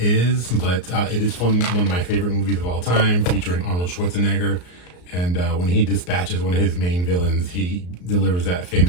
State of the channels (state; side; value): late; right; 34 ms